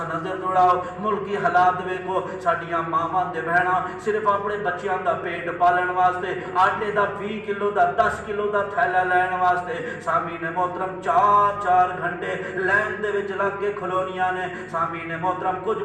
نظر دوڑاؤ، ملکی حالات ویکھو، ساڈیاں ماواں تے بہناں صرف اپنے بچیاں دا پیٹ پالن واسطے آٹے دا 20 کلو دا 10 کلو دا تھیلا لین واسطے سامعین محترم 4 گھنٹے لائن دے وچ لگ کے کھلونیاں نے۔ سامعین محترم، کچھ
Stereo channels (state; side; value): identical; both; correlation 1.00